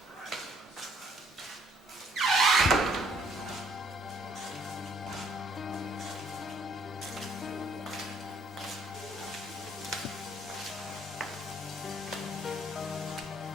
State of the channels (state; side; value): normal; both; correlation 0.64